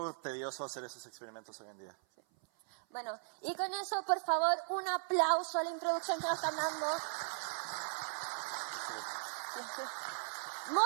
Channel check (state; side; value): silent; left; 52 dB below the other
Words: tedioso hacer esos experimentos hoy en día. Bueno, y con eso, por favor, un aplauso a la introducción que nos están dando.